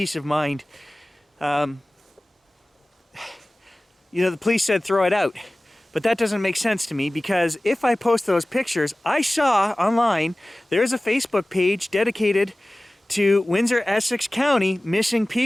of mind. The police said throw it out. But that doesn't make sense to me, because if I post those pictures, I saw online there's a Facebook page dedicated to Windsor, Essex County missing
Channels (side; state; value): both; normal; correlation 0.98